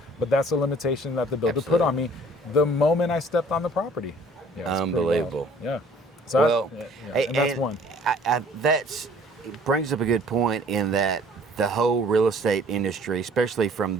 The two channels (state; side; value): normal; both; correlation 0.55